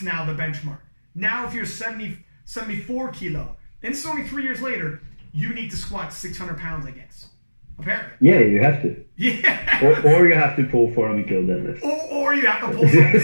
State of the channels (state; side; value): inverted; both; correlation -1.00